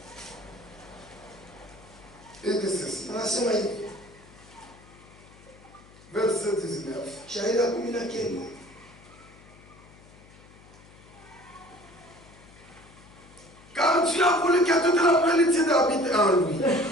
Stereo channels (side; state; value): left; noise; hum, 23 dB below the sound